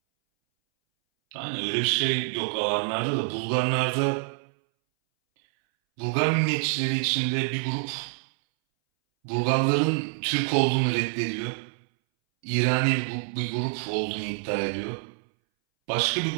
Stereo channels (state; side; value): silent; left; 60 dB below the other